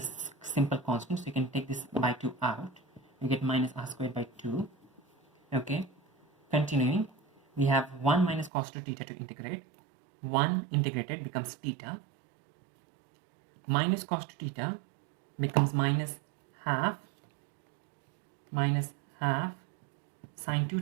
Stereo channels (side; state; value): left; drops out; at 8.5 s